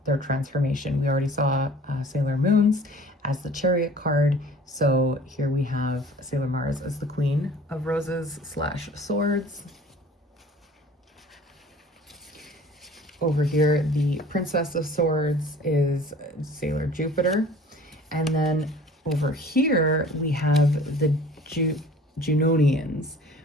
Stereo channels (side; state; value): both; normal; correlation 0.48